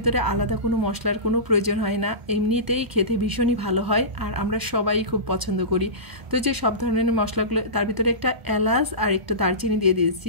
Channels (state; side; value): late; left; 1.0 ms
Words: আলাদা কোনো মশলার কোনো প্রয়োজন হয় না, এমনিতেই খেতে ভীষণই ভালো হয়, আর আমরা সবাই খুব পছন্দ করি। তো যে সব ধরনের মশলাগুলো, তার ভিতরে একটা এলাচ আর একটা দারচিনি দিয়ে